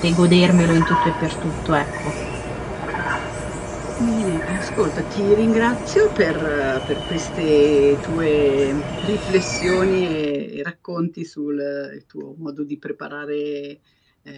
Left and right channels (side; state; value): both; identical; correlation 1.00